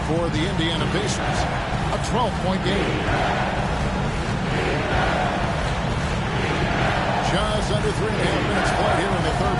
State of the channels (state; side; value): identical; both; correlation 1.00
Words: for the Indiana Pacers. A 12-point game. Just under 3.5 minutes played here in the third